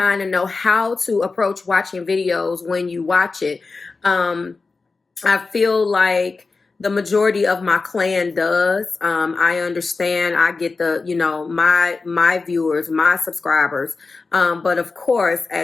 and know how to approach watching videos when you watch it. I feel like the majority of my clan does. I understand. I get my viewers, my subscribers. But of course,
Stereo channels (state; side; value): quieter; right; 4.1 dB